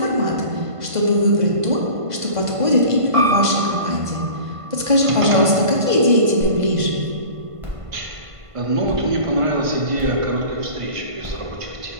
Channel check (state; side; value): late; left; 1.5 ms